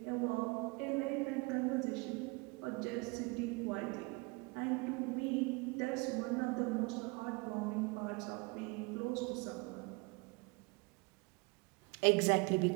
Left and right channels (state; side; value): quieter; left; 28.0 dB